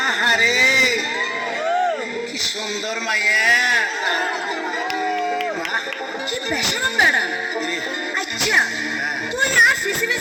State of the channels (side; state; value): both; identical; correlation 1.00